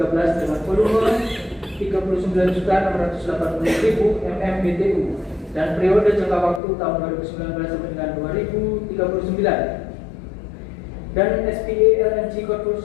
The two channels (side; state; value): right; drops out; at 6.6 s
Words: dengan volume 39.680.000 MMBTU dan periode jangka waktu tahun 2019 sampai dengan 2039. Dan SPA LNG